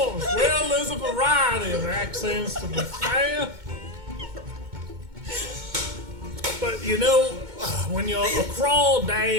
Well, there's a variety of accents to be fair. But you know, when you're a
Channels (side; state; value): left; late; 2.2 ms